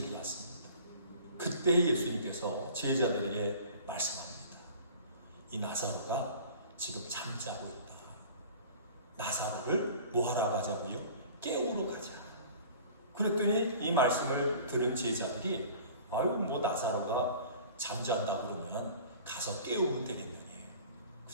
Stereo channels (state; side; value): inverted; both; correlation -0.44